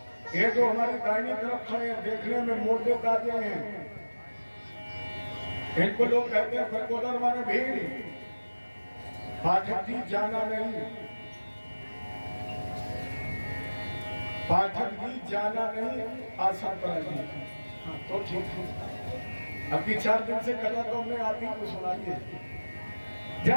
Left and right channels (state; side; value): inverted; both; correlation -1.00